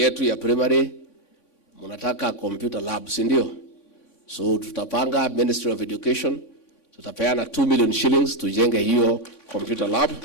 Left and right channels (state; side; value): late; right; 3.6 ms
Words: ya primary mnataka computer lab, si ndio? So tutapanga Ministry of Education, tutapeana 2 million shillings tujenge hiyo computer lab.